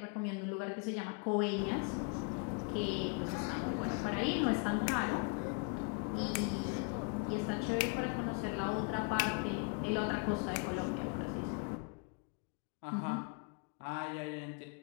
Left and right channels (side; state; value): right; quieter; 34.7 dB